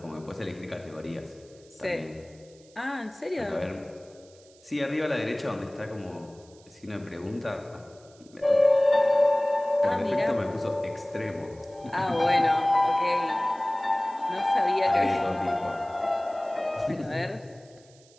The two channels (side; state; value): right; noise; hiss, 28 dB below the sound